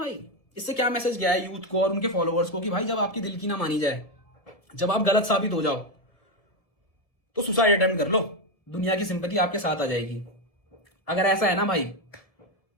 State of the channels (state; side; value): late; right; 1.7 ms